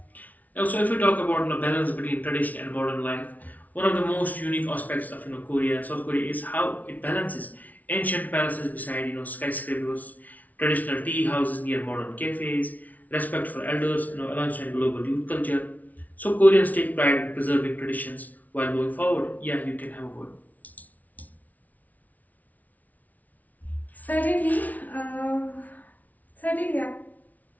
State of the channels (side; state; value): right; late; 0.074 ms